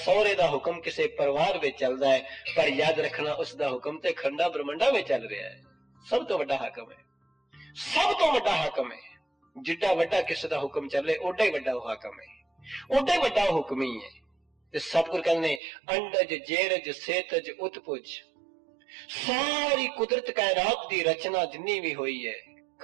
दा हुक्म किसे परिवार विच चलदा है। पर याद रखना, उस दा हुक्म ते खंडा ब्रह्मंडा विच चल रहा है। सब तो वड्डा हाकम है, सब तो वड्डा हाकम है। जिड्डा वड्डा किसे दा हुक्म चले, ओडा ही वड्डा हाकम है, ओडा ही वड्डा हुक्मी है। ते सतगुरु कहने अंडज जेरज सेतज उत्पुज, सारी कुदरत कायनात दी रचना जिन्नी भी हुई है,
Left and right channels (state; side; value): drops out; left; at 15.6 s